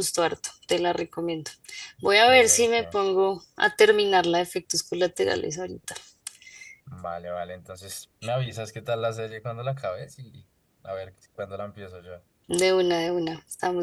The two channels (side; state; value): both; identical; correlation 1.00